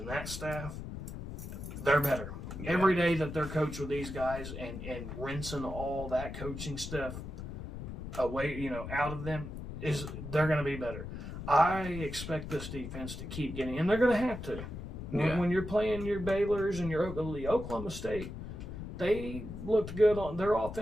that staff, they're better. Yeah. Every day that they're coached with these guys and rinsing all that coaching stuff away, out of them, they're going to be better. I expect this defense to keep getting, and they're going to have to. When you're playing your Baylors and your Oklahoma State, they looked good. Their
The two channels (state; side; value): noise; left; rumble, 8 dB below the sound